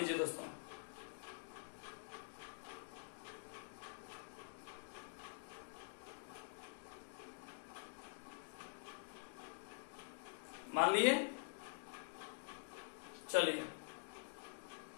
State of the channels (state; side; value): silent; right; digital silence